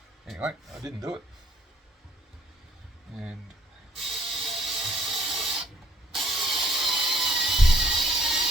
Anyway, I didn't do it, and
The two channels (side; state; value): both; normal; correlation 0.62